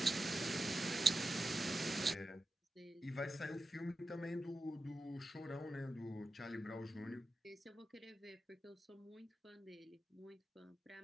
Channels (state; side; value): normal; both; correlation 0.91